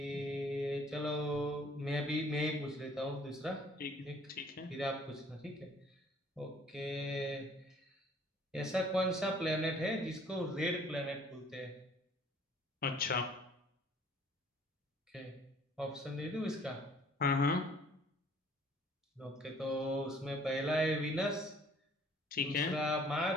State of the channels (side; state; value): both; normal; correlation 0.56